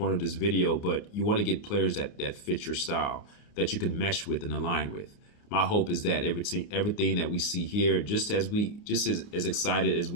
of this video, but you want to get players that fit your style, that you can mesh with and align with. My hope is that everything that we see here, just as excited as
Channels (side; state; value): right; late; 29 ms